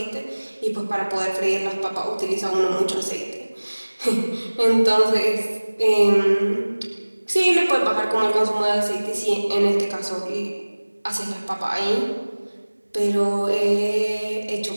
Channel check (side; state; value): both; inverted; correlation -1.00